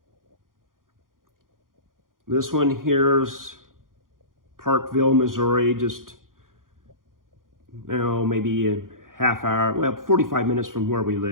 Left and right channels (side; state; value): left; late; 0.90 ms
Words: This one here's Parkville, Missouri, just, maybe a half hour, well, 45 minutes from where we